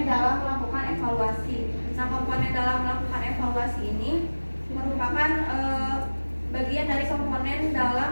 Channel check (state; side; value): inverted; both; correlation -1.00